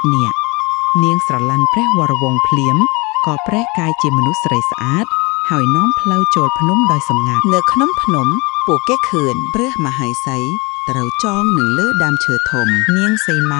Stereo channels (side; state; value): right; quieter; 26.3 dB